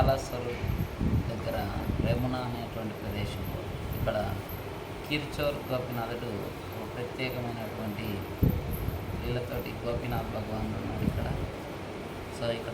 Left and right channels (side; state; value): both; identical; correlation 1.00